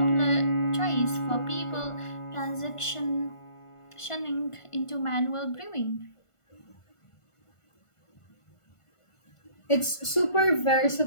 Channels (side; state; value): right; late; 1.5 ms